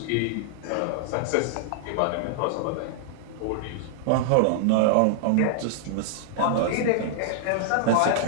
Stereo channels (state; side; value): different; both; correlation -0.01